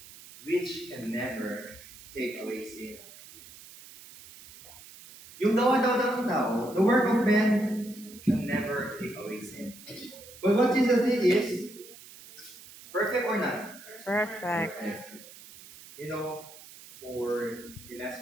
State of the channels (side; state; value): right; noise; hiss, 18 dB below the sound